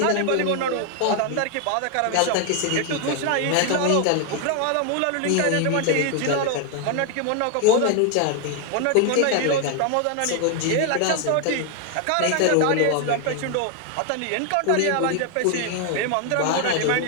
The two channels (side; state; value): both; different; correlation 0.00